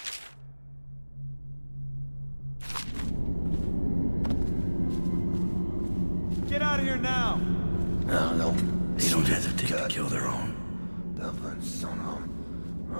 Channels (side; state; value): both; inverted; correlation -1.00